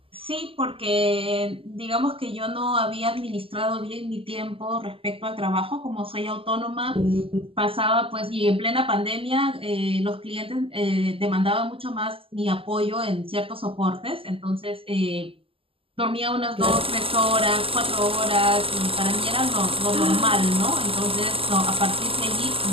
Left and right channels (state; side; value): late; left; 0.26 ms